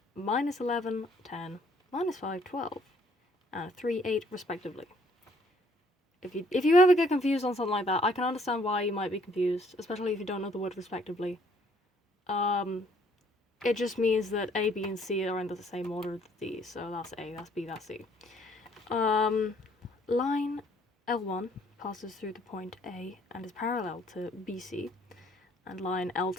-11, 10, -5, 12, and 3, 8 respectively. If you ever get confused on something like that, I can understand why you might be confused, especially if you don't know the word respectively. It just means that A, B, and C are in the same order as these, so that's A, that's B, that's C. Line L1 passes through the point A and is parallel to BC, and line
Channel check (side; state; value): both; normal; correlation 0.63